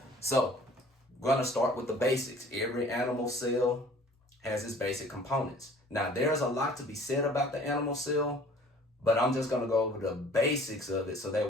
So we're going to start with the basics. Every animal cell has its basic components. Now, there's a lot to be said about the animal cell, but I'm just going to go over the basics of it so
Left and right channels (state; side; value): normal; both; correlation 0.51